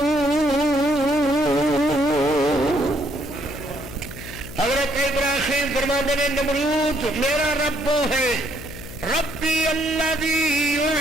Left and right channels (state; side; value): noise; left; hum, 14 dB below the sound